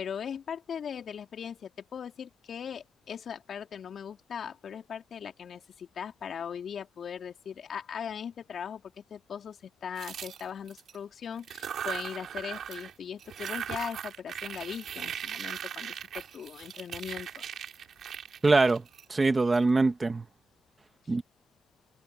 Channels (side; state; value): both; normal; correlation 0.89